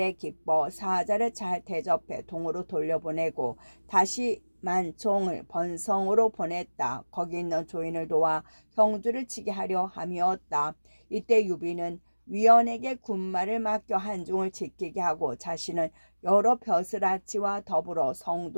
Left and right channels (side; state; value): both; inverted; correlation -1.00